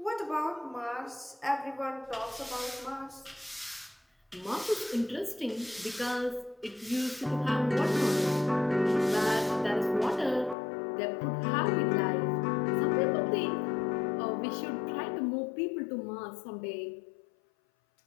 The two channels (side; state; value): right; drops out; at 10.6 s